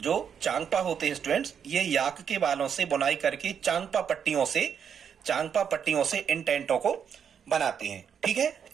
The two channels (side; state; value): left; quieter; 7.7 dB